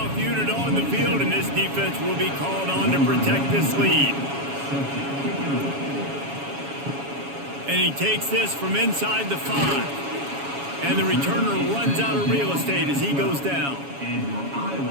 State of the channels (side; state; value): left; late; 7.2 ms